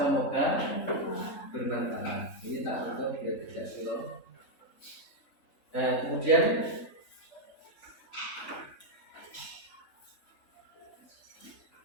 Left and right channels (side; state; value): right; late; 3.5 ms